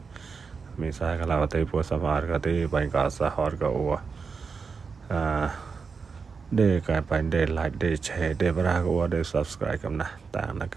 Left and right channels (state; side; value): quieter; left; 5.2 dB